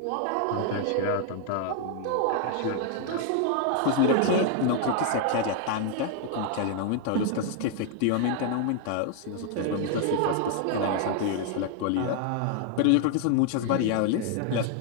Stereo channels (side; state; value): both; different; correlation 0.00